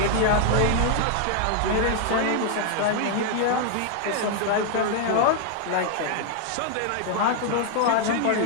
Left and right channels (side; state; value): both; different; correlation 0.00